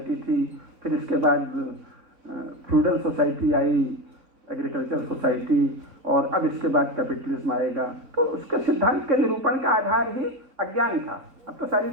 थी, फिर इसके बाद feudal society I, agriculture society, और अब इसके बाद कैपिटलिज्म आएगा। तो उसके सिद्धांत के निरूपण का आधार ही अज्ञान था। अब तो सारी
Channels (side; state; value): left; late; 4.0 ms